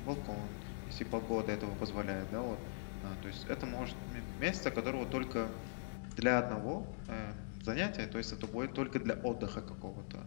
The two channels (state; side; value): silent; right; digital silence